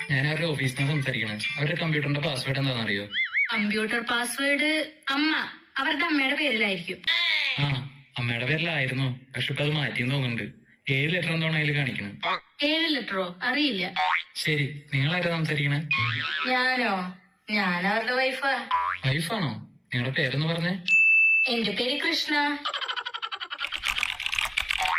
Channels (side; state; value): both; identical; correlation 1.00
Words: ഞാൻ അവരുടെ ഓഫീസിൽ നിന്ന് സംസാരിക്കണേ. അവരുടെ കമ്പ്യൂട്ടറിന്റെ പാസ്വേഡ് എന്താണെന്ന് അറിയോ? കമ്പ്യൂട്ടർ പാസ്വേഡ് അമ്മ, അവരുടെ അമ്മയുടെ പേരിലായിരിക്കും. ആ, അമ്മയുടെ പേരിലായിരുന്നു. പക്ഷെ ഇപ്പൊ അത് മാറ്റിയെന്ന് തോന്നുന്നുണ്ട്. 7 ലെറ്റർ എന്താണോ അതിൽ കാണിക്കണം. 7 ലെറ്ററോ? അറിയില്ല. ശരി, നിങ്ങളാരാ സംസാരിക്കണേ? ഞാനോ? ഞാൻ അവരുടെ വൈഫാ. വൈഫാണോ? നിങ്ങളുടെ പേരെന്ന് പറഞ്ഞേ? എന്റെ പേര് കൃഷ്ണ.